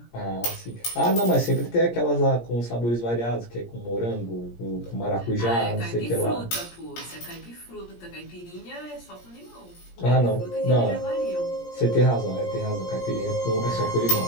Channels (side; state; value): right; late; 17 ms